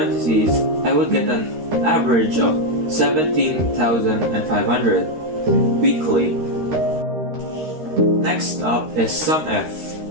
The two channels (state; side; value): late; left; 13 ms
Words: I would get an average of 17,500 weekly. Next up is SUMIF.